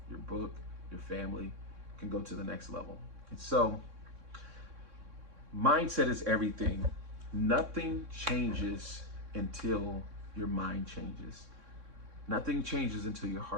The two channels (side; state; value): left; late; 3.6 ms